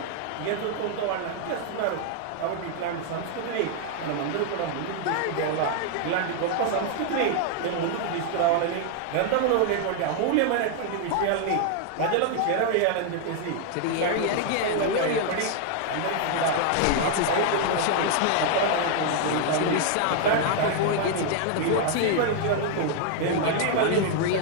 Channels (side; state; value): both; different; correlation 0.00